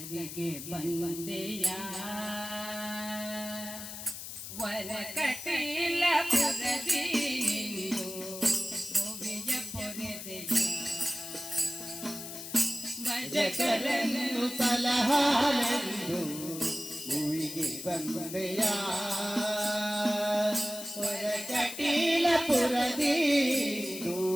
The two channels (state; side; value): noise; left; hiss, 9 dB below the sound